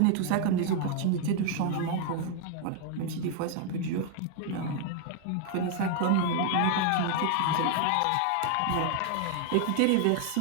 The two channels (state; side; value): different; both; correlation 0.00